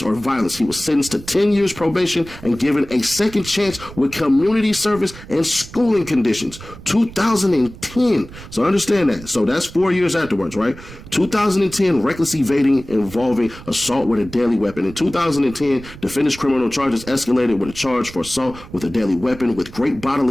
or violence. He was sentenced to 10 years probation and given a second chance with community service and schooling conditions. 2010. So understand that. So that's 4 years afterwards, right? 2010, reckless evading involving assault with a deadly weapon. In 2010, defendant's criminal charges escalated with a charge for assault with a deadly weapon with great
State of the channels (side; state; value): right; noise; rumble, 16 dB below the sound